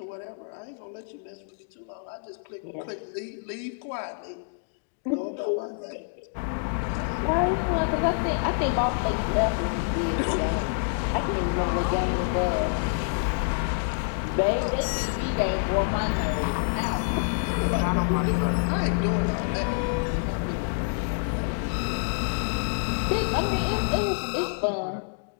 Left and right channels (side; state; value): right; silent; digital silence